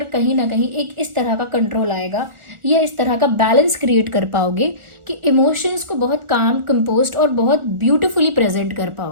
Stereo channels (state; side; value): late; left; 1.4 ms